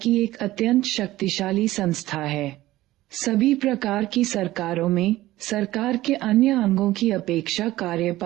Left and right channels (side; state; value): left; quieter; 16.4 dB